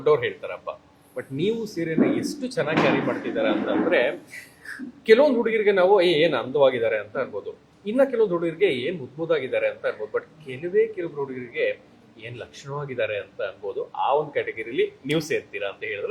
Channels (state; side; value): identical; both; correlation 1.00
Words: ಹೇಳ್ತಾರಪ್ಪ. ಬಟ್ ನೀವು ಸೀರೆನ ಎಷ್ಟು ಚೆನ್ನಾಗಿ ಕ್ಯಾರಿ ಮಾಡ್ತಿದ್ದಾರೆ ಅಂತಂದ್ರೆ, ಕೆಲವೊಂದು ಹುಡುಗರಿಗೆ ನಾವು ಏನು ಅಂದವಾಗಿದ್ದಾರೆ ಅಂತ ಅನ್ಬೋದು, ಇನ್ನ ಕೆಲವೊಂದು ಹುಡುಗರಿಗೆ ಏನು ಮುದ್ದಾಗಿದ್ದಾರೆ ಅಂತ ಅನ್ಬೋದು. ಬಟ್ ಕೆಲವೊಬ್ರು ಹುಡುಗರಿಗೆ ಏನ್ ಲಕ್ಷಣವಾಗಿದ್ದಾರೆ ಅಂತ ಅನ್ಬೋದು. ಆ ಒಂದು ಕ್ಯಾಟಗರಿಲಿ ನೀವು ಸೇರ್ತೀರಾ ಅಂತ